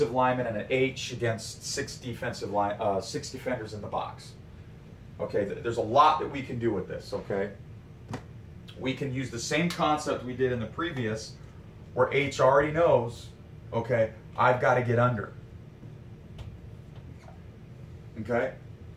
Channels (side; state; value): both; identical; correlation 1.00